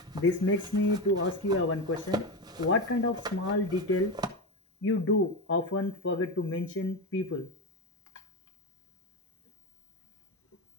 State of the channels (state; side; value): normal; both; correlation 0.17